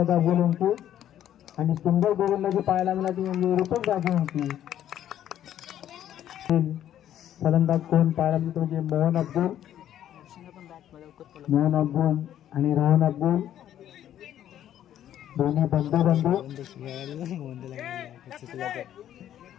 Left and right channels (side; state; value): right; quieter; 11.2 dB